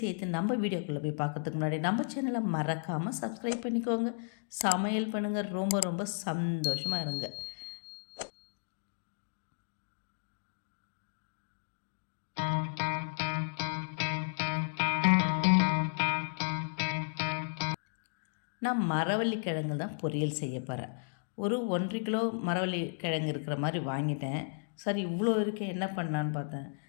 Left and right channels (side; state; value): right; silent; digital silence